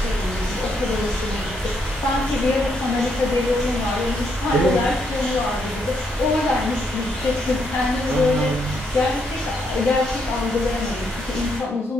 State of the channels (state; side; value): normal; both; correlation 0.75